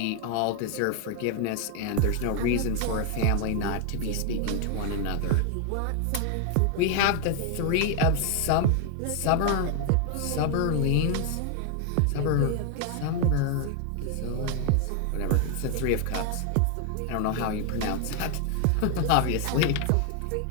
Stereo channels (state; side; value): different; both; correlation 0.01